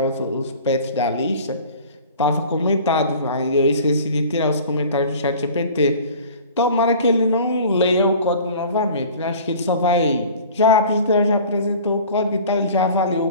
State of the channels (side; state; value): both; inverted; correlation -0.44